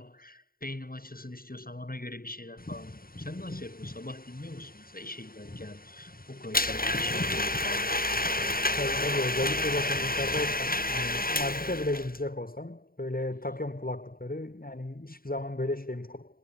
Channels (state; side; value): late; right; 0.43 ms